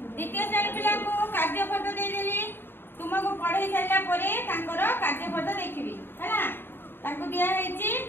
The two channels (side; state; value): right; late; 0.10 ms